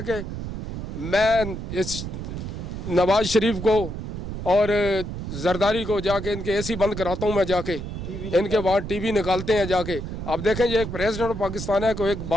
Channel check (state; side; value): noise; right; rumble, 6 dB below the sound